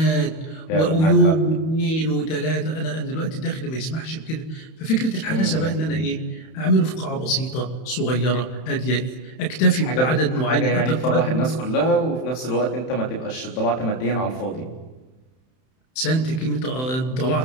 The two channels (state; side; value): late; right; 31 ms